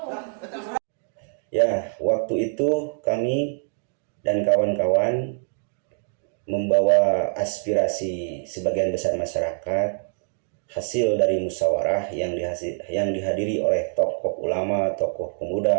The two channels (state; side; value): silent; left; digital silence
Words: Ya, waktu itu kami dan kawan-kawan membawa aspirasi sebagian besar masyarakat hasil dari musyawarah yang dihadiri oleh tokoh ulama, tokoh